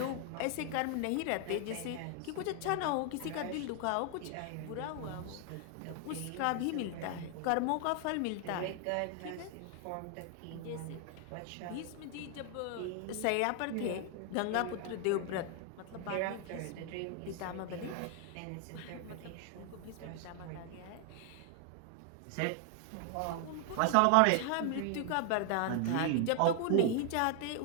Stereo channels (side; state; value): both; different; correlation 0.00